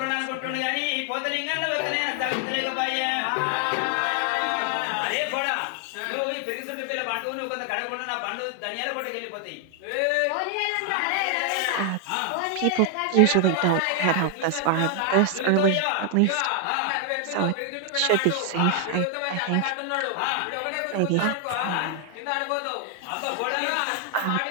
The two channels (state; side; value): different; both; correlation 0.00